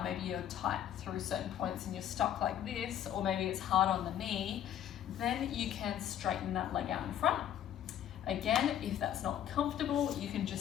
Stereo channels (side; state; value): right; quieter; 10.6 dB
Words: maybe you're tight through certain points and you're stuck like this, or maybe it's hard on the knee, then you can straighten that leg out in front. Again, if that's not comfortable, you can